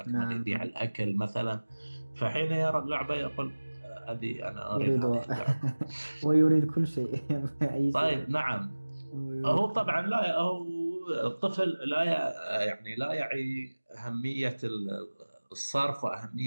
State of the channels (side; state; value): both; inverted; correlation -1.00